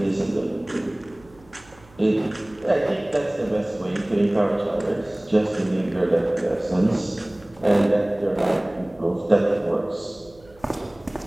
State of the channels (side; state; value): right; noise; hum, 26 dB below the sound